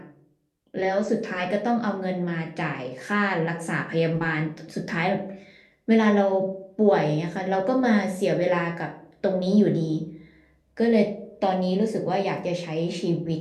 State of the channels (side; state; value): both; identical; correlation 1.00